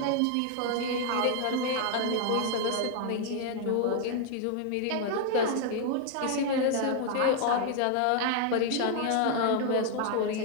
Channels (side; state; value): both; different; correlation 0.00